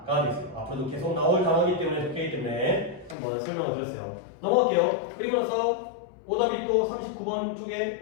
되겠어요. 앞으로도 계속 나올 단어이기 때문에 적혀있기 때문에 한번 설명을 드렸어요. 넘어갈게요. 그리고 나서 오답이 또 39번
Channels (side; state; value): right; drops out; at 3.2 s